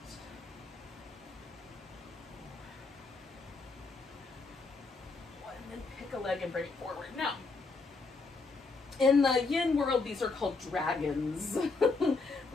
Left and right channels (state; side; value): quieter; right; 4.0 dB